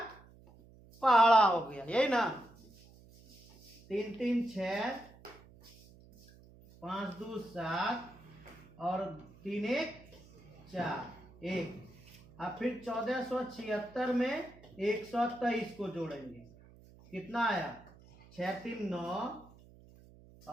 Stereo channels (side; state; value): right; noise; hum, 23 dB below the sound